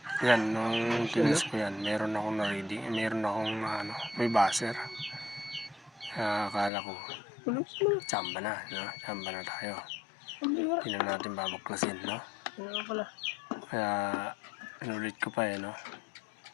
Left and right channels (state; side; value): drops out; right; at 6.7 s